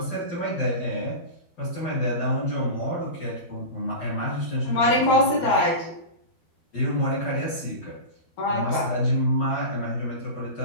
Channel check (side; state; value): right; late; 12 ms